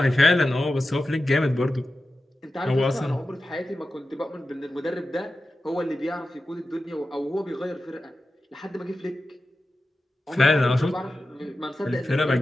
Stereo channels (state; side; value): normal; both; correlation 0.93